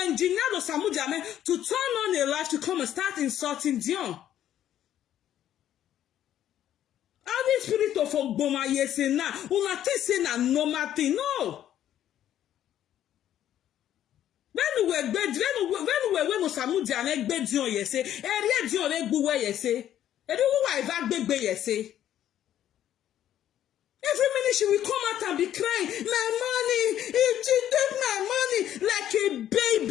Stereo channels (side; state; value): right; quieter; 11.3 dB